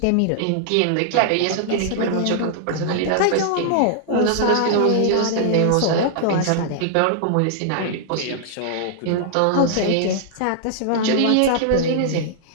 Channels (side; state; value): both; different; correlation -0.01